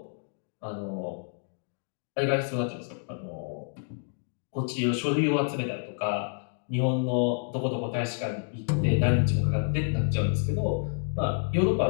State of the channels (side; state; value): right; silent; 59 dB below the other